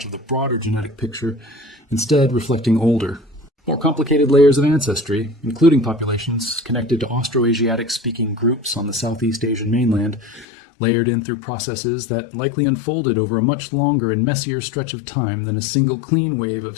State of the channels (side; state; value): right; drops out; at 10.5 s